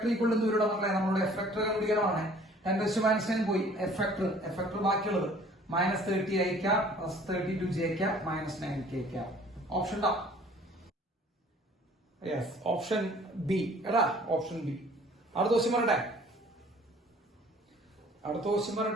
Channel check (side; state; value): both; normal; correlation 0.53